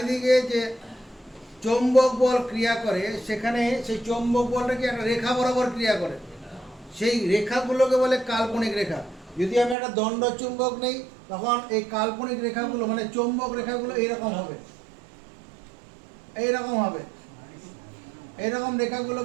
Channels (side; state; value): left; drops out; at 9.8 s